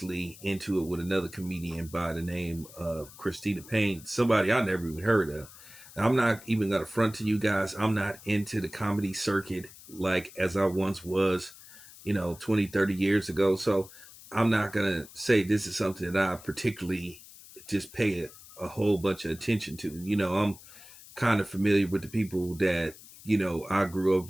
into it with another comedian by the name of Christina Payne, somebody I never even heard of. I'm not even going to front to you guys. I'm not into the comedy circuit like as I once was, 20, 30 years ago. So I'm not going to say this is something that I particularly just pay a whole bunch of attention to. I'm kind of familiar with the people that, I grew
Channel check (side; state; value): left; noise; hiss, 19 dB below the sound